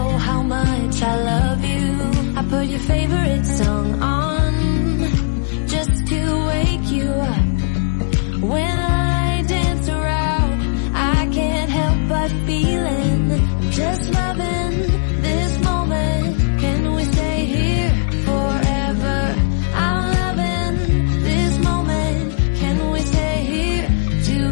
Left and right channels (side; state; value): right; silent; digital silence